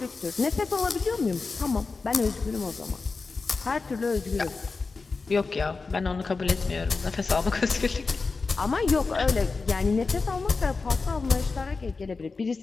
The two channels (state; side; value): quieter; right; 4.2 dB